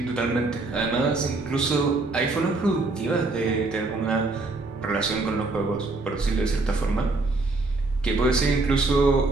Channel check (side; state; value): left; quieter; 3.4 dB